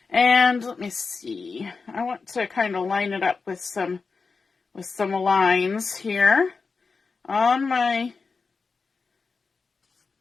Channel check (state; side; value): quieter; right; 4.6 dB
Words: and let me see. I want to kind of line it up with some lines here on my